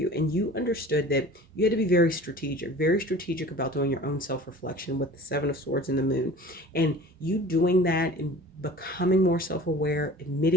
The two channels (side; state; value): both; normal; correlation 0.43